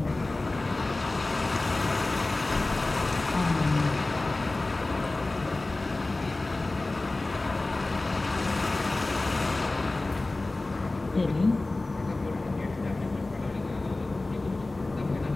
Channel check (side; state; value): right; quieter; 3.1 dB